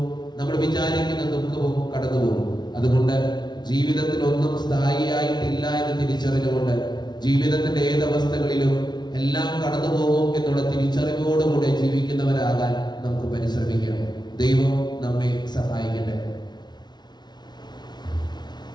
നമ്മൾ വിചാരിക്കുന്ന ദുഃഖവും കടന്നുപോകും. അതുകൊണ്ട് ജീവിതത്തിൽ ഒന്നും സ്ഥായിയായിട്ടില്ല എന്ന് തിരിച്ചറിഞ്ഞുകൊണ്ട് ജീവിതത്തിന്റെ ഏതവസ്ഥകളിലും എല്ലാം കടന്നു പോകും എന്നുള്ള തിരിച്ചറിവോടുകൂടെ ജീവിക്കുന്നവരാകാൻ നമുക്ക് പരിശ്രമിക്കാം. ദൈവം നമ്മെ സഹായിക്കട്ടെ.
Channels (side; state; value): right; late; 0.20 ms